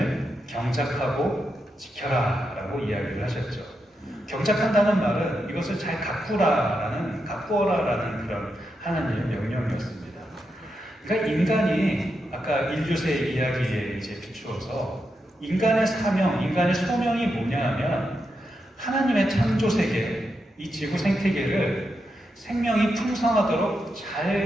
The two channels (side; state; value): both; normal; correlation 0.85